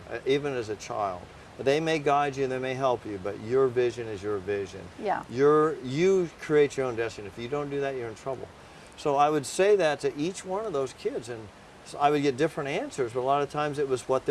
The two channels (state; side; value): identical; both; correlation 1.00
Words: even as a child. They may guide you and they may help you, but your vision is your vision. Yeah. You create your own destiny. If you don't do that, you're in trouble. So I would say that to each one of those kids, and so I would get different answers, but a lot of times it was what